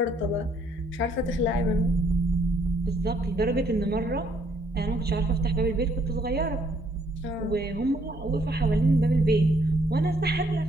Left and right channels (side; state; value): both; normal; correlation 0.67